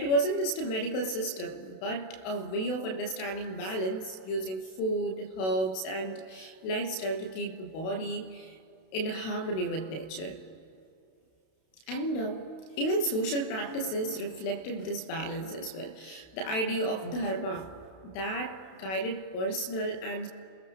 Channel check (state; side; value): late; right; 32 ms